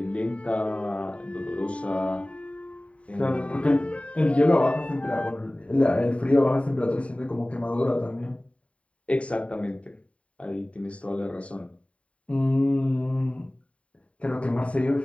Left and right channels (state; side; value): late; right; 0.064 ms